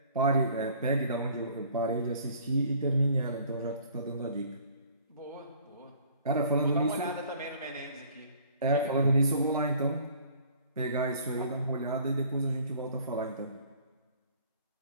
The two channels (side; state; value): both; inverted; correlation -0.54